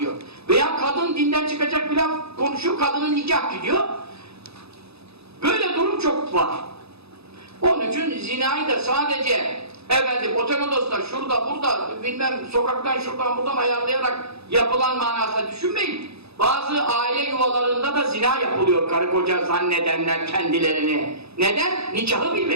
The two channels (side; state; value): left; late; 0.79 ms